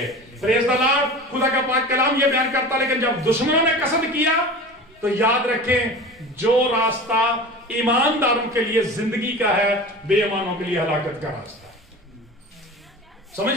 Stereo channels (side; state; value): both; normal; correlation 0.35